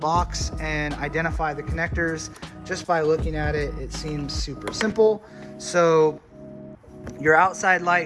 and identify the connectors. Just by looking at it, it seems super simple. So your outside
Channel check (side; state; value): both; identical; correlation 1.00